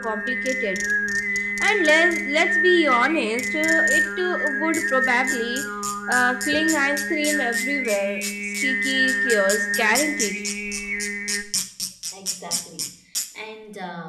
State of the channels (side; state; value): both; identical; correlation 1.00